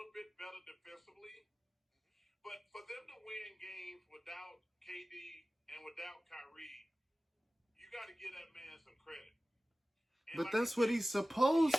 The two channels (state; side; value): normal; both; correlation 0.96